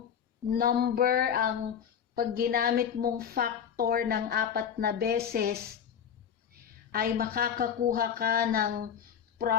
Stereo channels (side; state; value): right; quieter; 8.2 dB